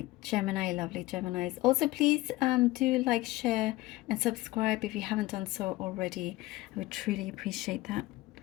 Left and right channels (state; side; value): quieter; right; 18.8 dB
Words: Gemini, lovely Geminis. Also, please do like, share, and subscribe if you haven't done so already. I would truly appreciate that.